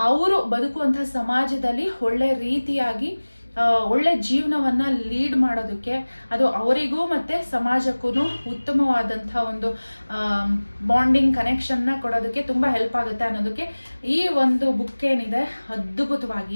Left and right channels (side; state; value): both; inverted; correlation -1.00